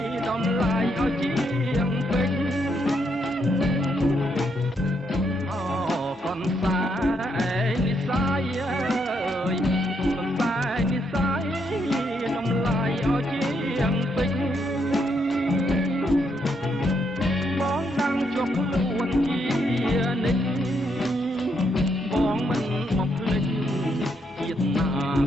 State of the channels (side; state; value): both; normal; correlation 0.77